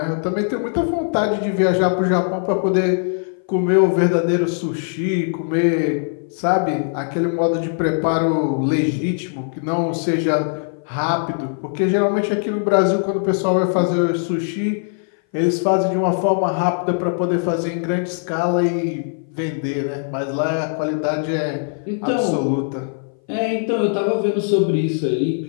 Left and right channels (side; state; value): right; silent; 59 dB below the other